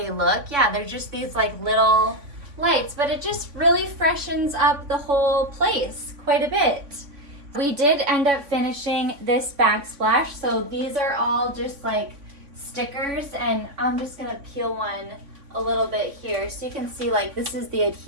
look, yeah, they're just these like little lights, but it just really freshens up the whole place quite a bit. We did end up finishing this backsplash, so these are all just like stickers, and I'm just gonna peel one a little bit here so you can see like this is the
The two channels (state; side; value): late; left; 3.5 ms